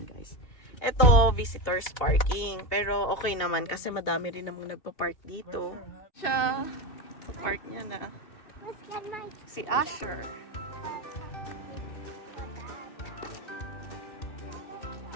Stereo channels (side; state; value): right; late; 2.8 ms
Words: guys. Ito, visitors parking. Pero okay naman kasi madami rin namang nagpa-park dito. Siya, sa park niya na. Let's get my Si Asher.